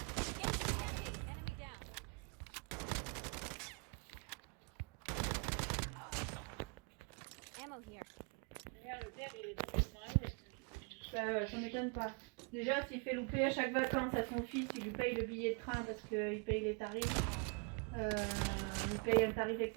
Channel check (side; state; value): left; quieter; 33.6 dB